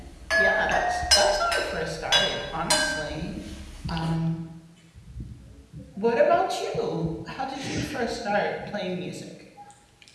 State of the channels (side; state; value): both; identical; correlation 1.00